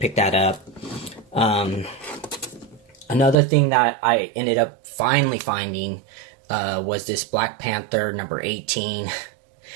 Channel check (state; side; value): drops out; left; at 3.4 s